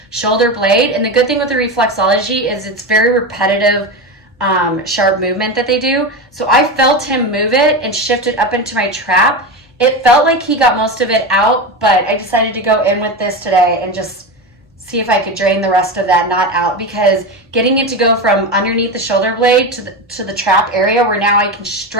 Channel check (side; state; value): both; normal; correlation 0.20